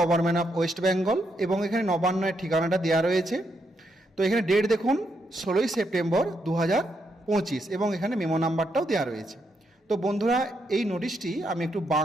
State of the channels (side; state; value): both; normal; correlation 0.79